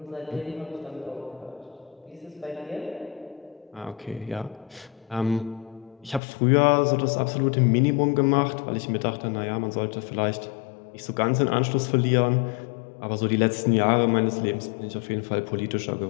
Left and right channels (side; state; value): right; drops out; at 6.2 s